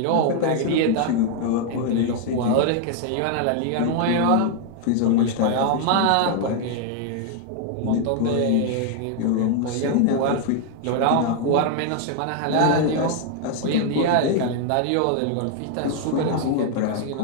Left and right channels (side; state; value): both; different; correlation 0.00